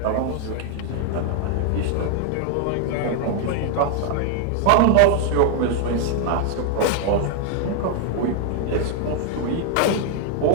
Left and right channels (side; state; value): both; different; correlation 0.00